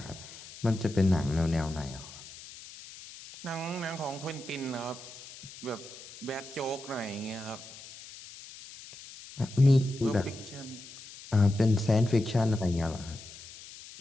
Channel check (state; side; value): noise; left; hiss, 16 dB below the sound